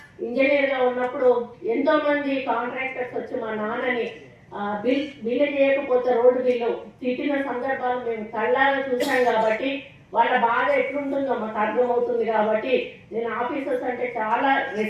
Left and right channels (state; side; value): identical; both; correlation 1.00